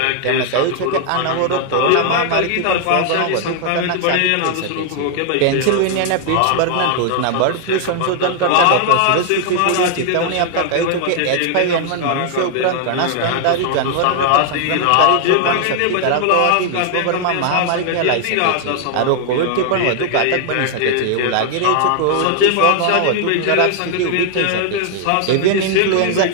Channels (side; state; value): both; different; correlation 0.00